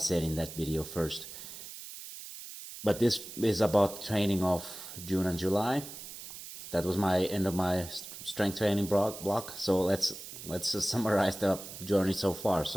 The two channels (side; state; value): right; noise; hiss, 12 dB below the sound